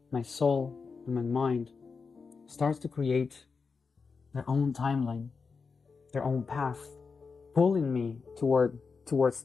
my soul and my mind starts to create their own timeline, their own path, pulling me towards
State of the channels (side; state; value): right; quieter; 5.0 dB